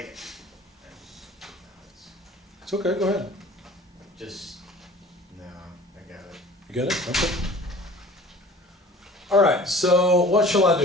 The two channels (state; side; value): normal; both; correlation 0.45